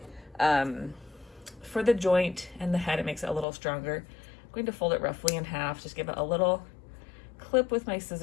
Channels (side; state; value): right; drops out; at 3.5 s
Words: joint and the head. It makes it a little stronger. I'm going to fold it roughly in half, just give it a little clip with my